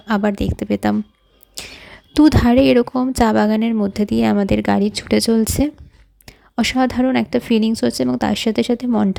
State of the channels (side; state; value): both; identical; correlation 1.00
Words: আবার দেখতে পেতাম। দুধারে এরকম চা বাগানের মধ্যে দিয়ে আমাদের গাড়ি ছুটে চলছে। অসাধারণ একটা ফিলিংস হচ্ছে এবং তার সাথে সাথে